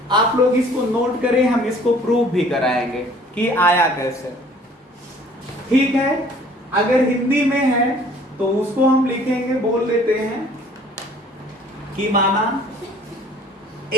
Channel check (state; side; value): normal; both; correlation 0.54